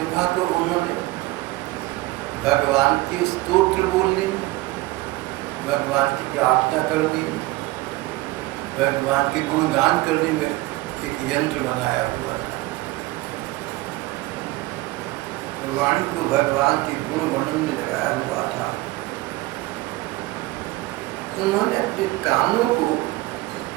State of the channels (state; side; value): quieter; left; 19.6 dB